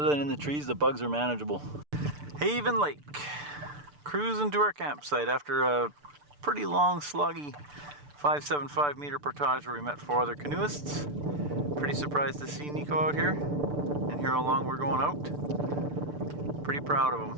than in the trees, the bugs are manageable. Haven Lake. Cruising to our campsite after a pretty long, sluggy 575 meter portage where we met 4 other canoeists. Pretty surprised to see Nico out here and hear how long we're going out. Pretty proud of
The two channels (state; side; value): late; left; 6.8 ms